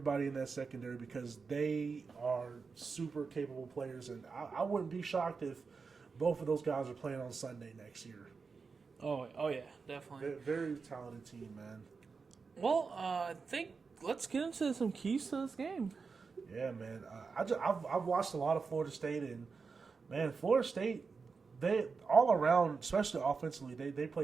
in that secondary, because they are super capable players, and I wouldn't be shocked if both of those guys are playing on Sunday next year. Oh yeah, definitely. Very talented team, man. Well, I think let's get into some keys to this game. Yeah, man. I've watched a lot of Florida State, and man, Florida State, they all around, especially offensively, they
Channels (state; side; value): quieter; left; 4.9 dB